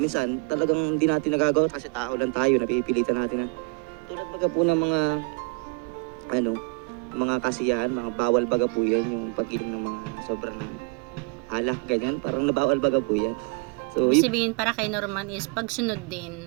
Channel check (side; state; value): left; quieter; 30.2 dB